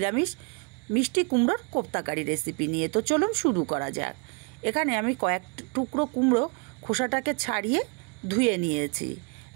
মিষ্টি কুমড়োর কোপ্তাকারি রেসিপি নিয়ে। তো চলুন শুরু করা যাক। এখানে আমি কয়েক টুকরো কুমড়ো খোসাটাকে ছাড়িয়ে ধুয়ে নিয়েছি।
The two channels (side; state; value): left; quieter; 35.5 dB